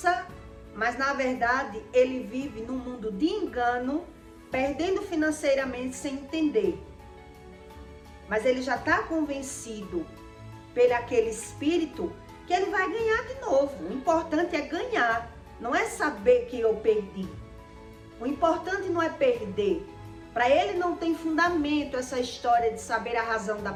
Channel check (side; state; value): both; identical; correlation 1.00